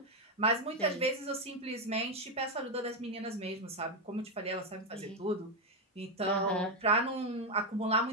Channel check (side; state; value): both; normal; correlation 0.05